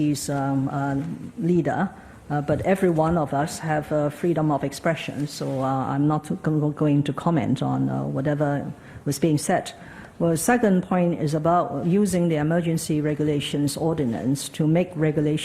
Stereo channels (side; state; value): both; identical; correlation 1.00